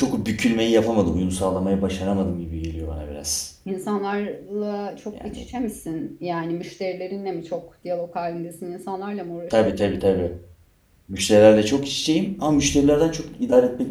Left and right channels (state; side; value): identical; both; correlation 1.00